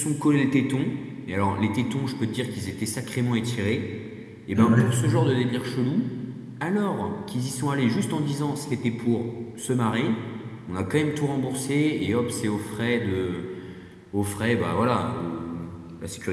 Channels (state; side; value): identical; both; correlation 1.00